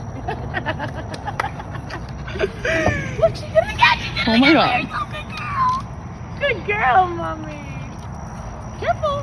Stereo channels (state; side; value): identical; both; correlation 1.00